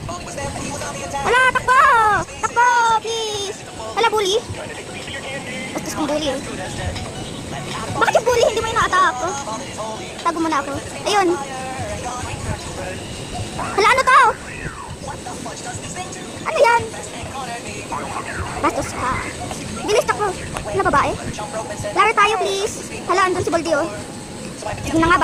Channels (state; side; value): identical; both; correlation 1.00